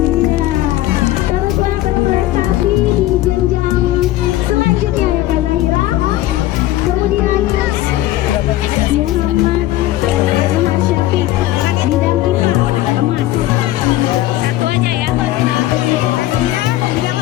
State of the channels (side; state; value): right; quieter; 14.9 dB